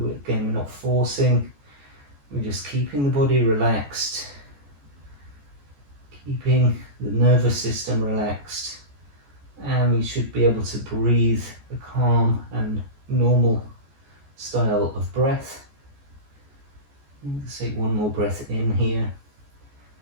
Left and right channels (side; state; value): left; late; 14 ms